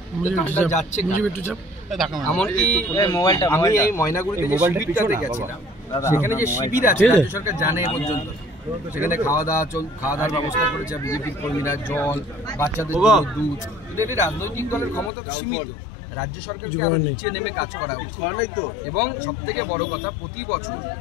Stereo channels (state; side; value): drops out; right; at 15.1 s